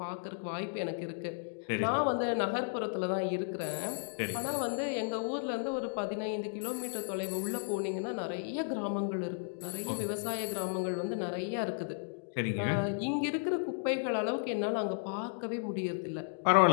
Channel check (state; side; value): silent; right; digital silence